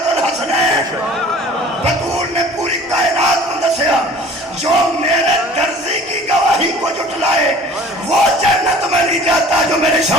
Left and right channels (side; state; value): both; normal; correlation 0.47